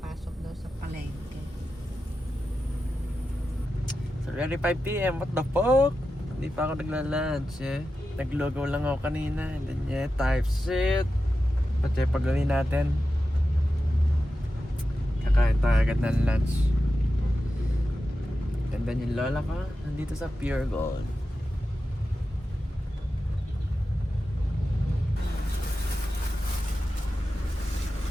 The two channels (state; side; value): normal; both; correlation 0.91